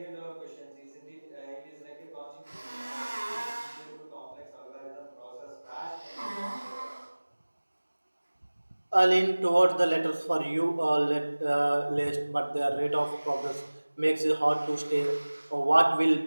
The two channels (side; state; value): both; inverted; correlation -1.00